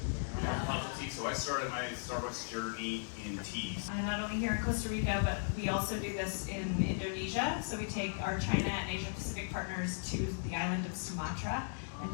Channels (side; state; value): right; silent; digital silence